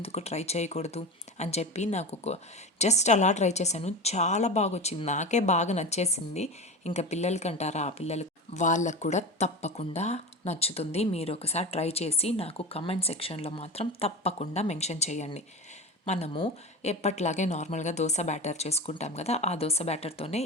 ట్రై చేయకూడదు అని చెప్పి నాకు జస్ట్ అలా ట్రై చేశాను. చాలా బాగా వచ్చింది, నాకే బాగా నచ్చేసింది. ఇంకా పిల్లలకి అంటారా, ఆ పిల్లలకి వాళ్ళకు కూడా తప్పకుండా నచ్చుతుంది. మీరు ఒకసారి ట్రై చేసి నాకు కమెంట్ సెక్షన్లో మాత్రం తప్పకుండా మెన్షన్ చేయండి. మనము ఎప్పట్లాగే నార్మల్గా దోశ బ్యాటర్ చేసుకుంటాం కదా, ఆ దోశ బ్యాటర్తోనే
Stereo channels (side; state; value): both; normal; correlation 0.27